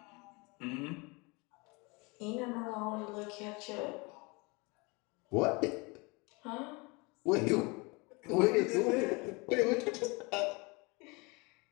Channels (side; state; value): right; quieter; 27.5 dB